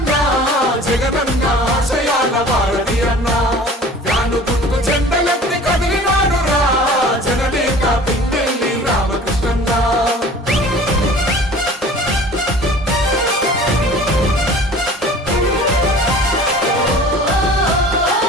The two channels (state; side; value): normal; both; correlation 0.44